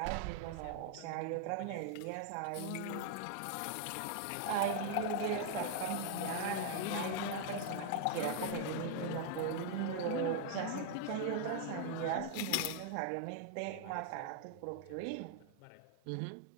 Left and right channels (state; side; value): different; both; correlation 0.00